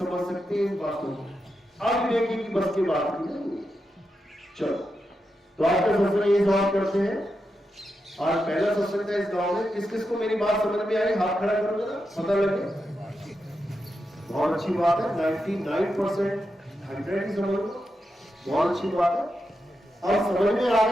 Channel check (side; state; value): both; normal; correlation 0.87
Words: सकते हैं इन बातों को। अविवेकी की बस की बात नहीं। चलो, तो आज का सत्संग ये समाप्त करते हैं। आज पहला सत्संग था इस गांव में। किस किस को मेरी बात समझ में आई? हाथ खड़ा करो जरा, पता लगे। बहुत अच्छी बात है, 99% 100 ही समझ लो, बहुत अच्छी बात है। अब समझ में आ